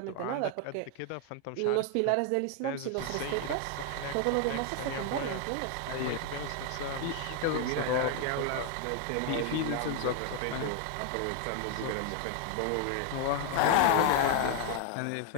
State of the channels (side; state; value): both; different; correlation 0.00